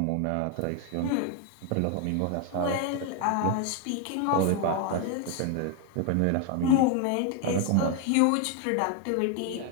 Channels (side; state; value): both; different; correlation 0.01